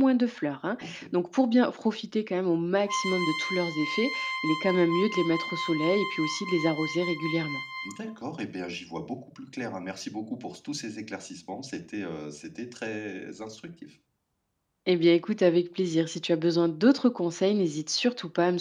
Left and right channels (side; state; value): both; identical; correlation 1.00